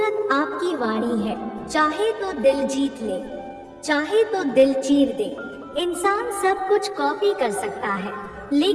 आपकी वाणी है। चाहे तो दिल जीत ले, चाहे तो दिल चीर दे। इंसान सब कुछ कॉपी कर सकता है,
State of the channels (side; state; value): both; identical; correlation 1.00